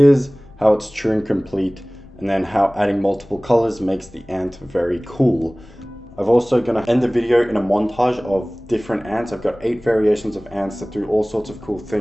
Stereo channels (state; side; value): noise; left; rumble, 23 dB below the sound